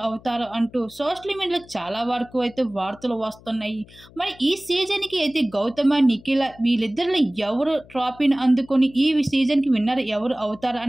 అవుతారు అంటూ సోషల్ మీడియాలో చాలా వరకు అయితే వార్తలు వస్తున్నాయి. మరి ఈ సీజన్కి అయితే గౌతమ, నిఖిల వీళ్ళిద్దరిలో ఎవరు ట్రోఫీని అందుకొని ఈ సీజన్కి విన్నర్ ఎవరు అవుతారు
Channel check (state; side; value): noise; left; hum, 23 dB below the sound